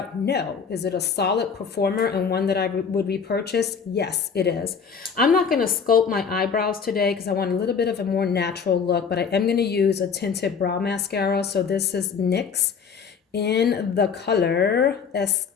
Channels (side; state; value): right; quieter; 6.2 dB